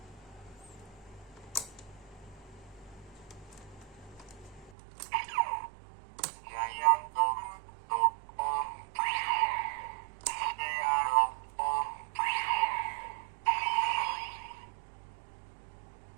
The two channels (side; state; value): left; drops out; at 4.7 s